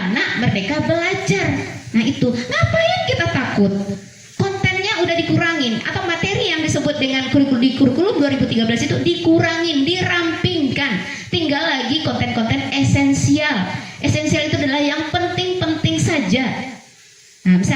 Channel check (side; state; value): both; identical; correlation 1.00